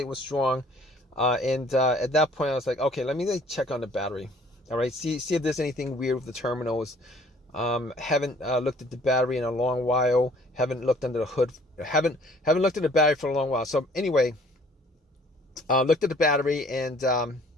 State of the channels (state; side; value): normal; both; correlation 0.56